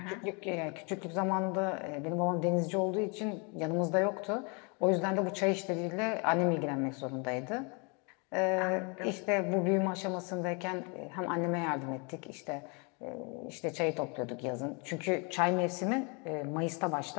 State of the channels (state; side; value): quieter; right; 33.0 dB